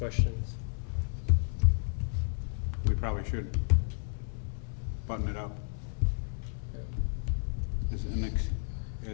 We probably should button it up. Yeah. Is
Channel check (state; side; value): silent; right; 56 dB below the other